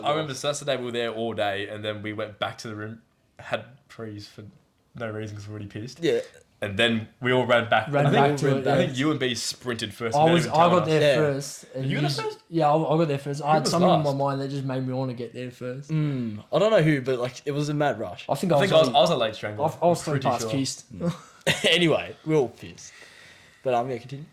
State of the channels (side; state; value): both; identical; correlation 1.00